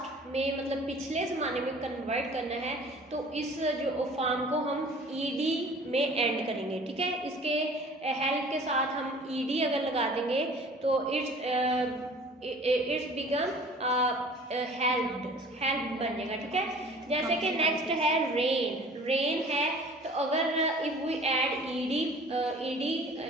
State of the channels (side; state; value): both; normal; correlation 0.48